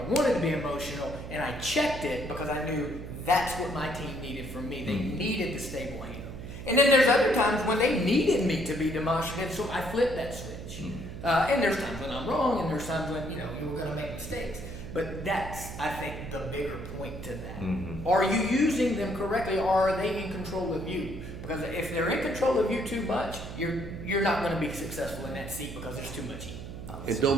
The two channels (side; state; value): right; noise; hum, 10 dB below the sound